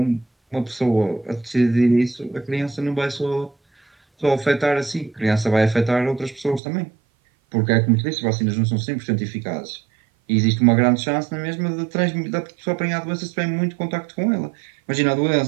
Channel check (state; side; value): drops out; left; at 6.6 s